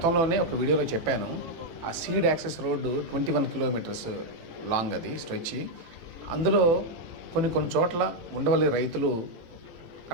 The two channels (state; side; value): late; left; 18 ms